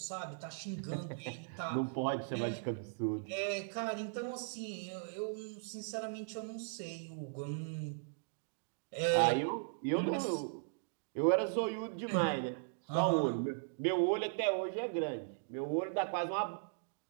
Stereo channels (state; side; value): silent; left; digital silence